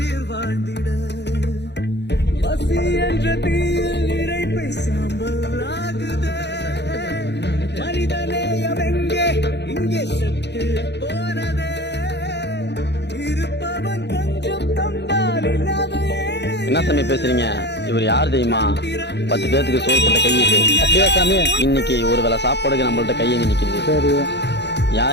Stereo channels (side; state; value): right; late; 0.50 ms